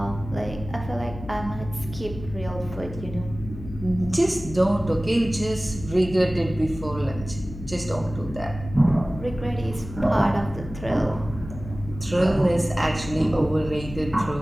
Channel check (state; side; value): noise; left; hum, 12 dB below the sound